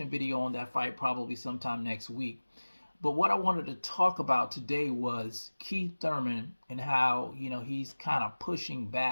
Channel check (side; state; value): both; inverted; correlation -1.00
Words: video on that fight probably sometime next week. But what I wanted to talk about today was Keith Thurman and how, he's kind of pushing